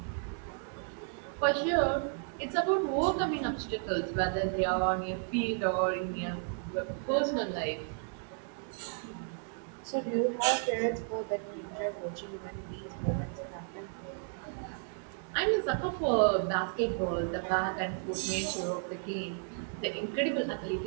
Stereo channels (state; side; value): silent; left; 56 dB below the other